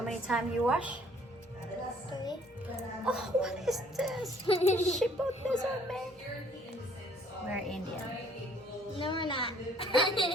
many times you wash? 3. Oh, what is this? She put this on me. We're Indian. No, we're not.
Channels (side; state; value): both; normal; correlation 0.60